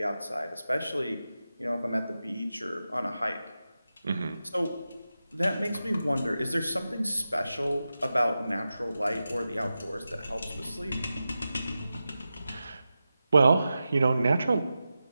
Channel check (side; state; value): both; inverted; correlation -0.92